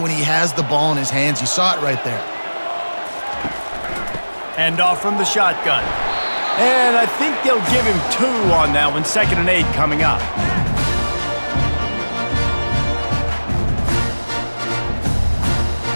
he has the ball in his hands. You saw it right there. Hand off from the shotgun. And I think they'll give him 2 on that one. 2nd and 8 coming up.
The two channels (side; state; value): both; inverted; correlation -1.00